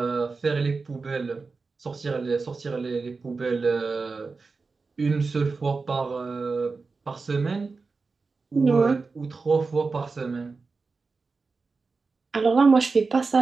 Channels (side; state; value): left; quieter; 4.3 dB